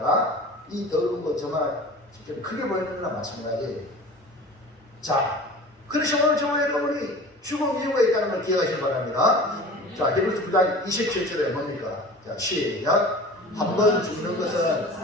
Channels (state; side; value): normal; both; correlation 0.39